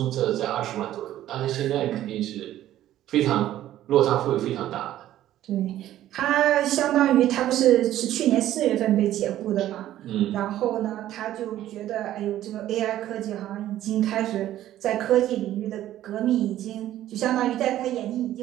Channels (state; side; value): quieter; left; 13.1 dB